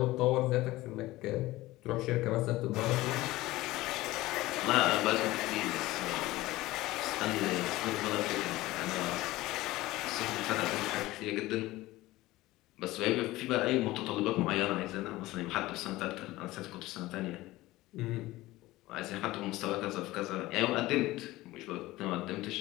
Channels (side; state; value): right; quieter; 18.1 dB